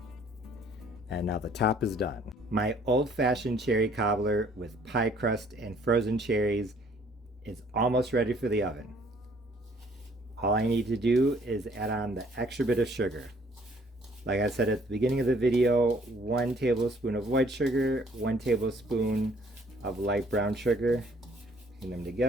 And now the top is done. My old-fashioned cherry cobbler with pie crust and frozen cherries is almost ready for the oven. All I need to do is add on the extra bit of sugar. Like I said at the beginning of the video, 1 tablespoon of white sugar, 1 tablespoon of light brown sugar. Put them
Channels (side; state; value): both; normal; correlation 0.60